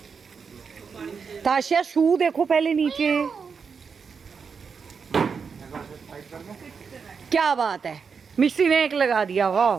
ताशिया शू देखो पहले नीचे। क्या बात है, मिस्त्री ने एक लगा दिया, वाह।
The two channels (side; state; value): left; quieter; 5.8 dB